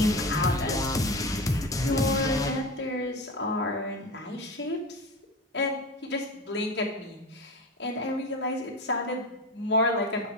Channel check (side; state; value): both; normal; correlation 0.25